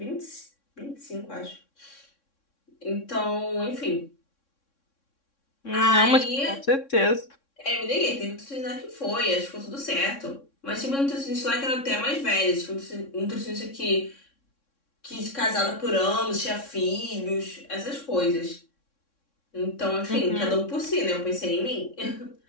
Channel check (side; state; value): right; late; 3.6 ms